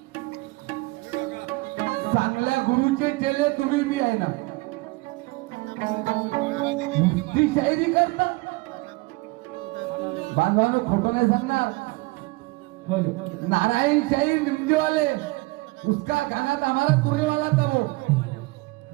चांगल्या गुरुचे चेले तुम्ही बी आहे ना. नुसती शायरी करता बांधवानो, खोटं नाही सांगणार. नारायण शाहीर निमजेवाले उसका गाना था हमारा तुरे वाला था वो.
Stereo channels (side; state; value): left; quieter; 23.8 dB